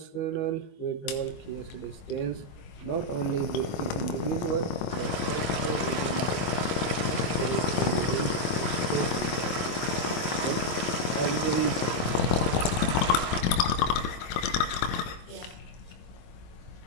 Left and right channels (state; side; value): late; right; 25 ms